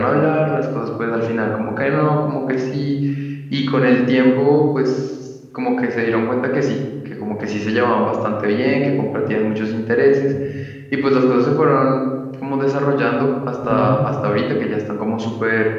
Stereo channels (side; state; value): both; identical; correlation 1.00